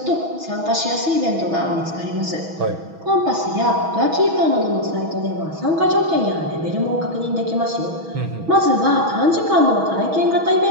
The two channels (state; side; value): late; left; 6.2 ms